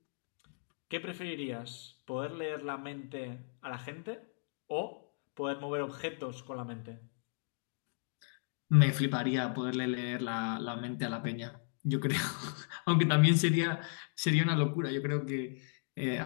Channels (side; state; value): right; silent; digital silence